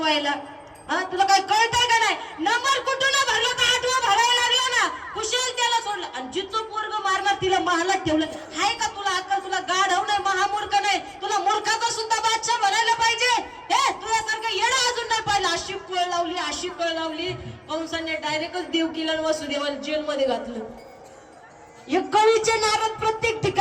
तुला काय कळतंय का नाही? नंबर कुठून भरला तर 8वा भरायला लागला ना, कुशल त्याला सोडलं, आणि जिचं पोरग मारणार तिला महालात ठेवलं. हाय का तुला अक्कल? तुला गाढव नाही, महामूर्ख नाही, तुला मूर्खाचा सुद्धा बादशाह बनायला पाहिजे. हे तुझ्यासारखं येणं अजून नाही पाहिलं. अशी कळ लावली, अशी कळ लावली, कंसाने डायरेक्टच देवकीला वसुदेवाला जेलमध्ये घातलं. हे कवीचे नारद प्रत्येक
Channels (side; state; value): both; identical; correlation 1.00